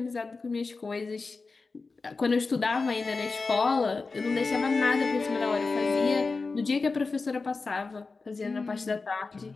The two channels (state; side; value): quieter; right; 4.1 dB